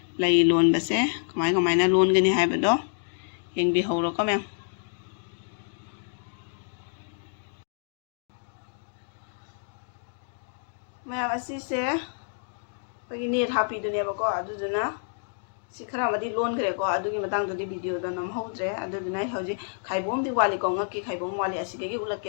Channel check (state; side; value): silent; right; digital silence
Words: lai lon base kamaina lon gani haibado yengbi hawro ko mem mayam asise bagi net happy duneba ko aduduna सिखरा मदी loan करे को अदुगी Matang ददी video the नम होद्रे अदुना हौजी खाइबोम दि वाली को ngaki खाइबोम वाली असिगे गी